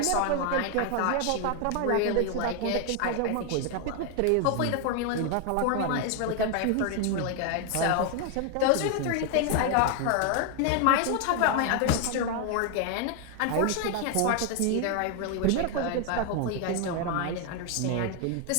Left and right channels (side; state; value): both; different; correlation 0.01